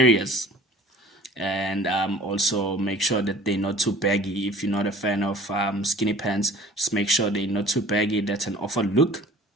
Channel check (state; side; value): normal; both; correlation 0.48